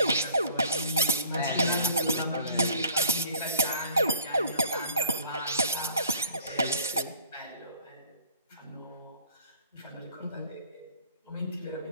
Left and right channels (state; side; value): inverted; both; correlation -0.54